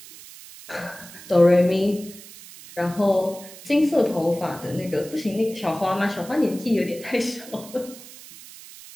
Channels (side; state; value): right; noise; hiss, 17 dB below the sound